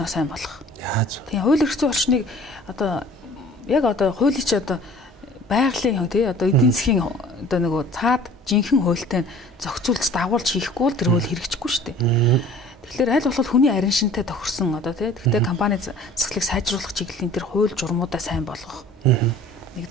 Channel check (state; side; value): normal; both; correlation 0.48